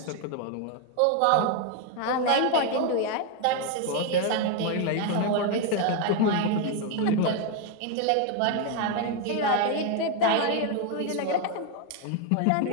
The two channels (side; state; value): both; different; correlation 0.01